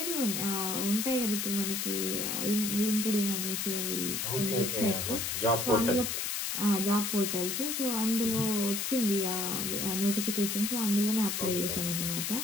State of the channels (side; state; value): left; noise; hiss, 1 dB below the sound